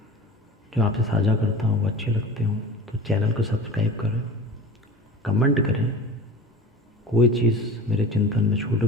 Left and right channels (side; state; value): both; normal; correlation 0.35